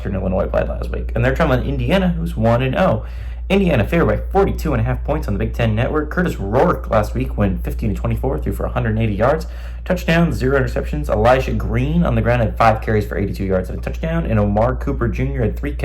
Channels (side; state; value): both; identical; correlation 1.00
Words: Illinois played last week. And they're traveling to Indiana, who's 1-0. Indiana favored by 42.5 points on the Big Ten Network. Curtis Rourke last week went 15-24, threw for 180 yards. Touchdown, 0 interceptions. Elijah Green on the ground had 5 carries for 82 yards and a touchdown. And Omar Cooper Jr. had 3